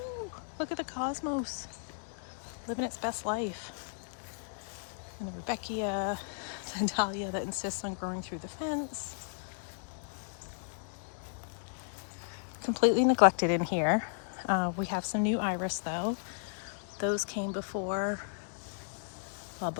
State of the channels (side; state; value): right; silent; digital silence